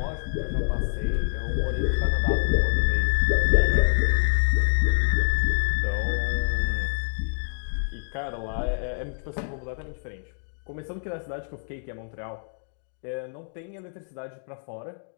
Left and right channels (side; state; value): right; silent; digital silence